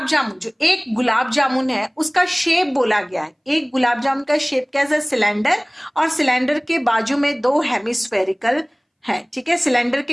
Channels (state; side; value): identical; both; correlation 1.00